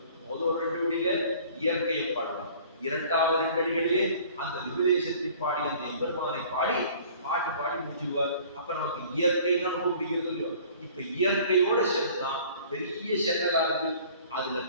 முதல் 2 வழியில இயற்கையை பாடுவார், 2வது 2 அடிகளிலே அந்த விபதேசத்தை பாடி அந்த எம்பெருமானை பாடி பாடி முடிச்சுடுவார். அப்ப நமக்கு இயற்கை தான் ரொம்ப பிடிக்கிறது இல்லையோ. இப்ப இயற்கையோட சேர்த்துதான் பெரிய சென்னலா இருக்கு. அதுல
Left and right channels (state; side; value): inverted; both; correlation -0.50